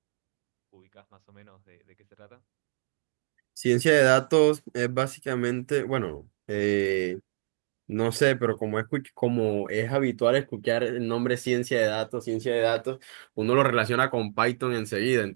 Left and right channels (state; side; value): silent; left; 60 dB below the other